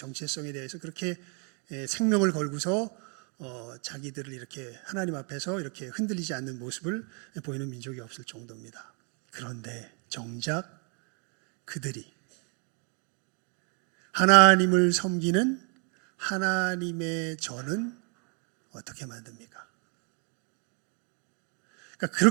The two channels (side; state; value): left; quieter; 37.2 dB